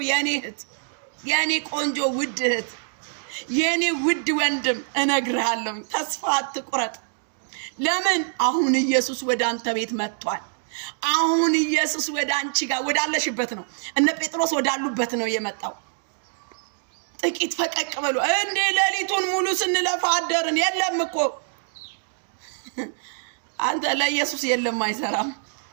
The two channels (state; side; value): silent; left; digital silence